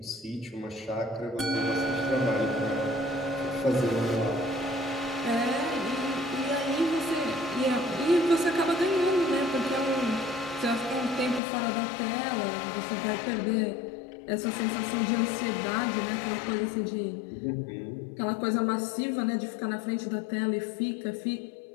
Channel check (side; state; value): right; drops out; at 11.4 s